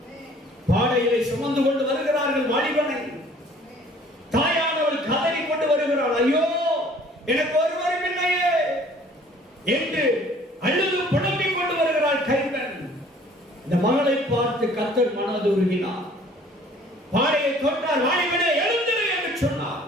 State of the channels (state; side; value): normal; both; correlation 0.54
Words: பாடையிலே சுமந்து கொண்டு வருகிறார்கள் வாலிபனை. தாயானவள் கதறி கொண்டு வருகிறாள், ஐயோ, எனக்கு ஒருவரும் இல்லையே என்று அழுது புலம்பிக் கொண்டு வருகிறாள் கைம்பெண். இந்த மகளை பார்த்து கர்த்தர் மனது உருகினார். பாடையை தொட்டார். வாலிபனே, எழுந்திரு என்று சொன்னார்.